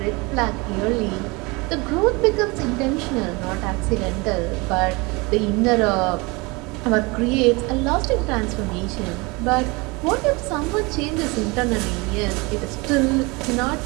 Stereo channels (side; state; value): left; quieter; 26.2 dB